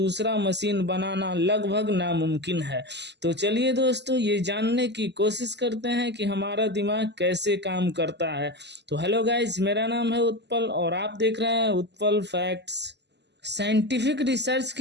मशीन बनाना लगभग नामुमकिन है। तो चलिए दोस्तों, ये जानने की कोशिश करते हैं कि हमारा दिमाग कैसे काम करता है। तो हेलो गाइज, मेरा नाम है उत्पल और आप देख रहे हैं उत्पल फैक्ट्स। साइंटिफिक रिसर्च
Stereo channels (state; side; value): late; left; 0.50 ms